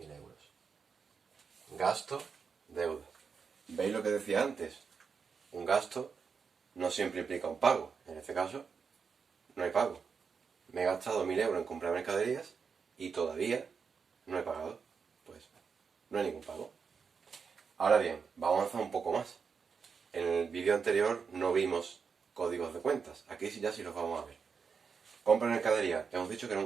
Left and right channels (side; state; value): left; quieter; 5.8 dB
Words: euros. Gasto, deuda. ¿Veis lo que decía antes? Un gasto no siempre implica un pago. En este caso, no hay pago. Me he gastado 1.000 euros en comprar mercaderías y todavía no he pagado. Pues no hay ningún pago. Ahora bien, vamos a avanzar un poco más. En el vídeo anterior no vimos códigos de cuentas. Aquí sí ya sí los vamos a ver. Compra mercadería, hemos dicho que era